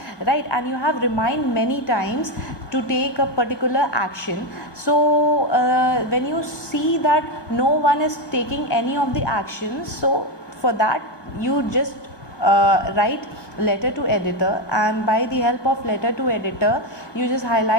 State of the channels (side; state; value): right; late; 1.2 ms